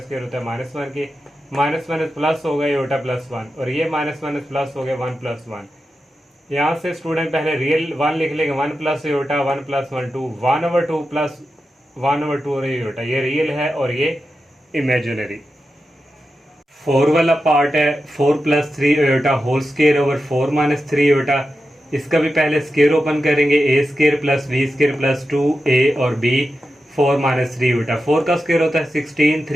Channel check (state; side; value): normal; both; correlation 0.90